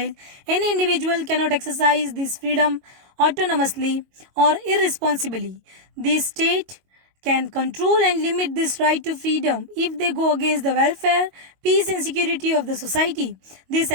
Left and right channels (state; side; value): late; left; 22 ms